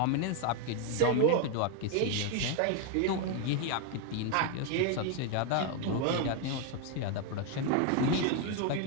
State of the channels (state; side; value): different; both; correlation 0.01